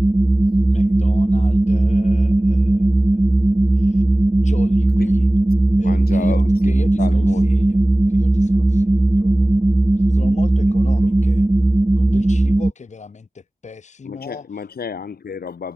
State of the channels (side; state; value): both; normal; correlation 0.98